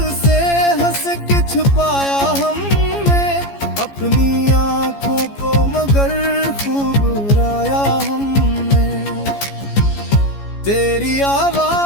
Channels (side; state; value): right; late; 14 ms